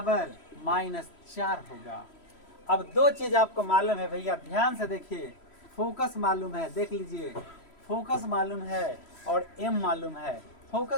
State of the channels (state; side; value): late; right; 3.1 ms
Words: -4 होगा। अब दो चीज आपको मालूम है भैया, ध्यान से देखिए, फोकस मालूम है, देख लीजिए, फोकस मालूम है और m मालूम है,